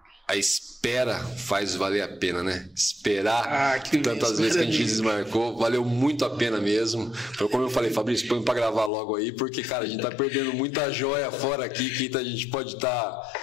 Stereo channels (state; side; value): drops out; right; at 8.9 s